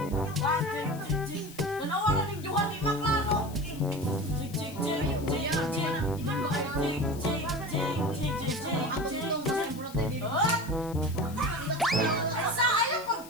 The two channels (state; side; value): noise; left; hiss, 18 dB below the sound